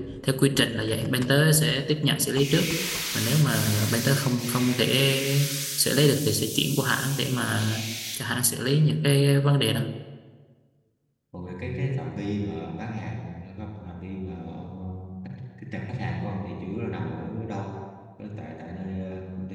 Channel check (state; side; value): identical; both; correlation 1.00